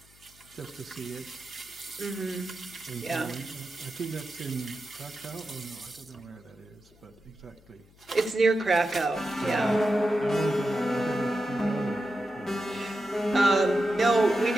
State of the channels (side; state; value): left; noise; hum, 27 dB below the sound